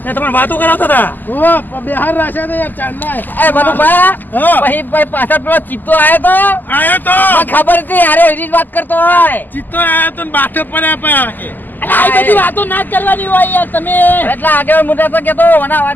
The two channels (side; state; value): right; late; 0.087 ms